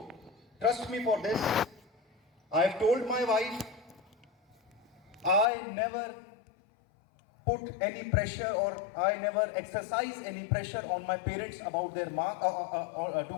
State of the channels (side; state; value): right; drops out; at 5.5 s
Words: trust me for this. I have told my wife I never put any pressure or I never exercise any pressure on my parents about their mark to